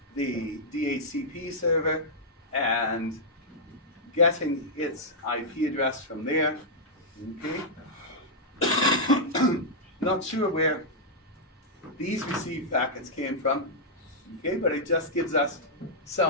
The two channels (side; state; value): both; normal; correlation -0.08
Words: the DHCP server, and getting its IP address from there. Okay? Not sure where these received packets came from, okay, but it just gives us